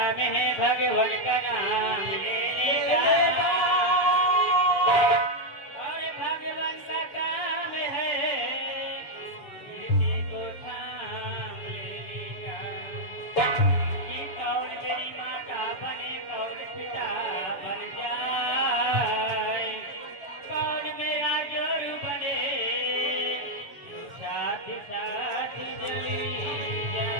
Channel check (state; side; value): late; right; 7.0 ms